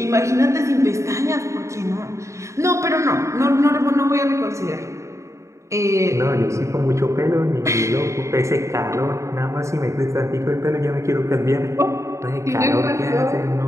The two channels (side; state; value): left; late; 0.14 ms